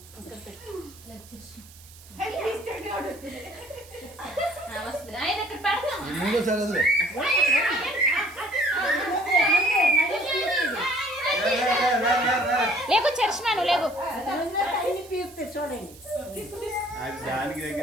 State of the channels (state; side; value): noise; right; hiss, 21 dB below the sound